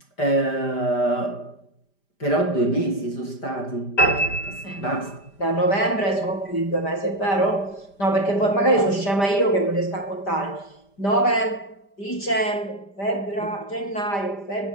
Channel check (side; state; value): right; late; 5.0 ms